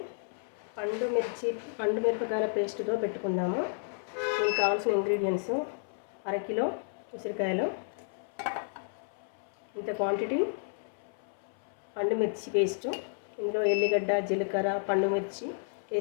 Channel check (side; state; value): right; silent; 57 dB below the other